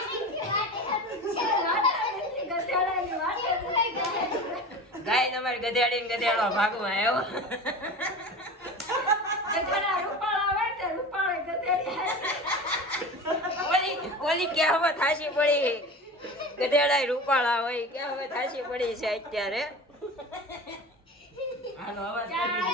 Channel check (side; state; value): both; normal; correlation 0.32